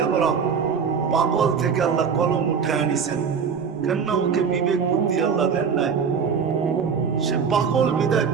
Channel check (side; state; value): left; quieter; 6.3 dB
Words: পাগল থেকে আল্লাহ কলম উঠে আনিছেন। কেন ওকে বিবেক বুদ্ধি আল্লাহ দেন নাই? সে পাগল বিদায়